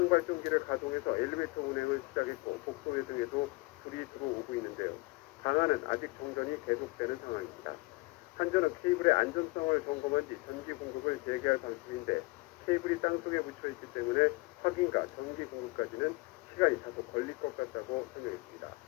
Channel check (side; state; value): right; quieter; 24.2 dB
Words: 가동해서 엘리베이터 운행을 시작했고 복도외 등에도 불이 들어오고 있는데요. 방안은 아직 정전이 계속되는 상황입니다. 한전은 케이블의 안전성을 점검한 뒤 전기 공급을 재개할 방침인데 케이블이 땅속에 묻혀있기 때문에 확인과 전기 공급까지는 시간이 다소 걸릴 것 같다고 설명했습니다.